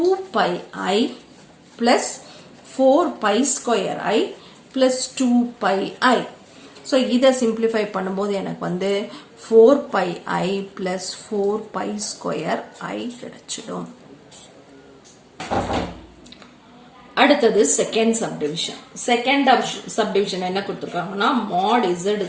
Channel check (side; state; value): both; identical; correlation 1.00